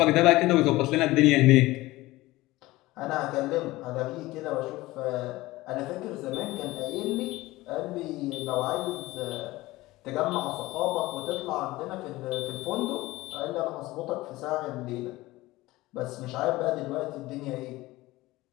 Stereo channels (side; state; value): right; quieter; 18.9 dB